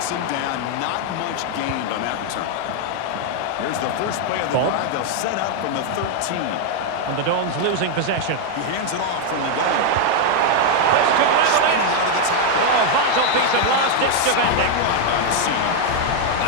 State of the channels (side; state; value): both; different; correlation 0.01